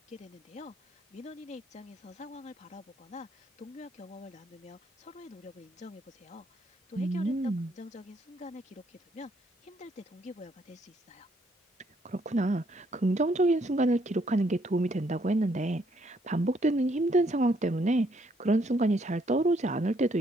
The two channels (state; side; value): normal; both; correlation 0.70